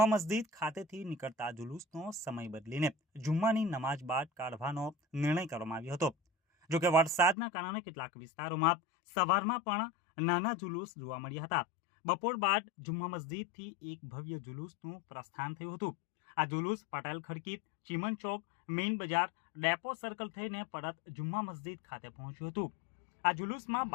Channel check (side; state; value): right; drops out; at 7.4 s